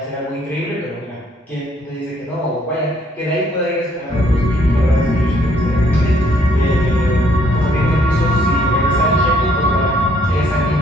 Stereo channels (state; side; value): normal; both; correlation 0.66